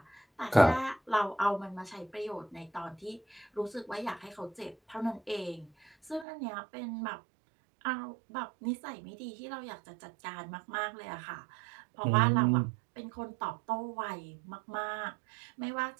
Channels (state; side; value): drops out; left; at 6.2 s